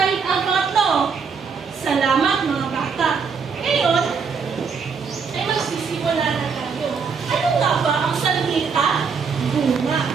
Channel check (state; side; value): quieter; left; 5.7 dB